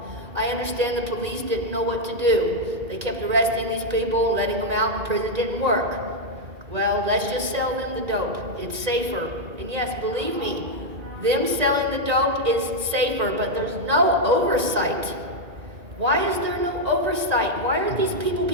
I understand the police didn't know what to do. They kept arresting these people, letting them out, and prison didn't work. Well, let's just sell them the dope. It's safer. And yes, believe me, them selling the dope is safer, but there's no oversight. Why is there no oversight? Why aren't these people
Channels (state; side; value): late; left; 1.9 ms